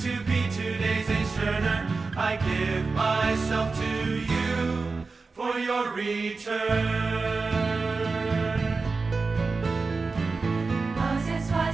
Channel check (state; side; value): quieter; left; 4.2 dB